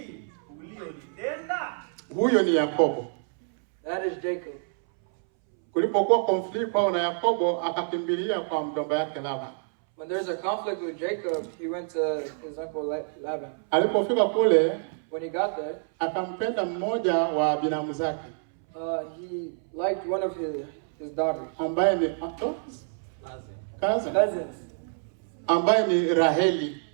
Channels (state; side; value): silent; left; 60 dB below the other